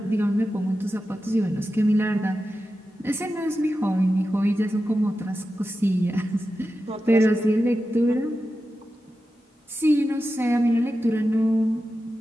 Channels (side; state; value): both; normal; correlation 0.92